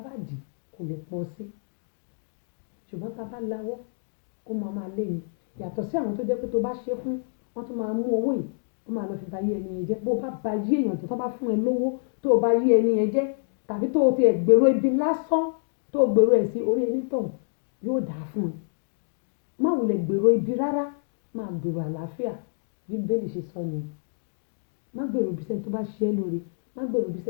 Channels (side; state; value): right; silent; digital silence